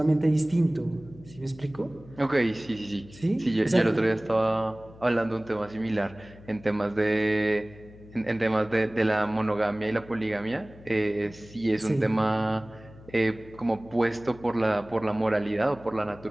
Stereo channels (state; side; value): noise; left; hum, 20 dB below the sound